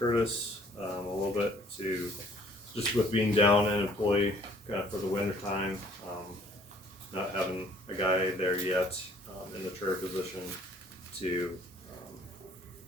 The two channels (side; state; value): both; normal; correlation 0.58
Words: a little bit to, just with being down an employee, kinda for the winter time, not having a guy there yet, in the chair position to,